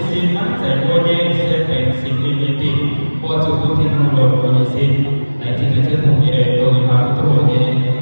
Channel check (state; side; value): inverted; both; correlation -1.00